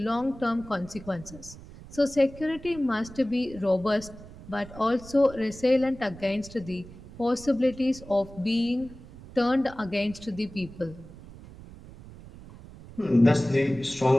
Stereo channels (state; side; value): noise; right; rumble, 17 dB below the sound